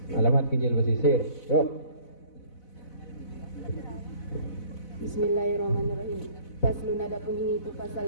Alamat Kijil Pesisir. Yuk. Bismillahirrahmanirrahim. Faslun, adapun ini itu pasal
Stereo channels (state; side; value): late; right; 4.0 ms